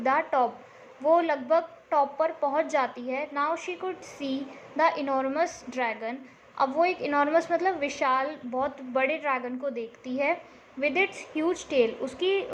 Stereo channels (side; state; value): both; identical; correlation 1.00